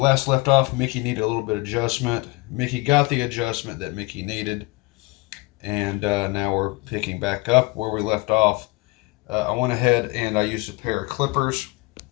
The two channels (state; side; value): quieter; right; 24.3 dB